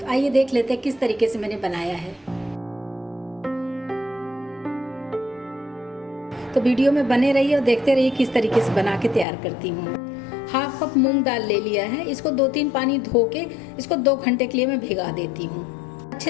आइए देख लेते हैं किस तरीके से मैंने बनाया है। तो वीडियो में बने रहिए और देखते रहिए किस तरीके से बना के तैयार करती हूँ। हाफ कप मूंग दाल ले लिया है। इसको 2-3 पानी धो के इसको 2 घंटे के लिए मैं भिगा देती हूँ।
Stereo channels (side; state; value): right; drops out; at 9.2 s